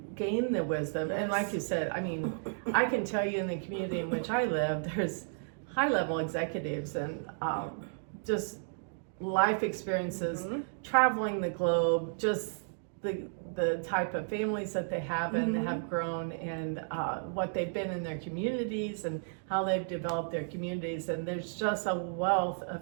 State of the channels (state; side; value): silent; left; digital silence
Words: gain the wisdom. And like you said, I mean, I can tell you in the community in which I live, there's high-level executives and just life experiences, traveling the globe, just the type of families that they have and have grown, and what they've been in their communities and how they've developed their communities. And there's just a wealth